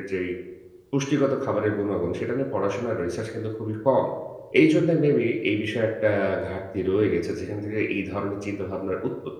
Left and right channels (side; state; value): both; identical; correlation 1.00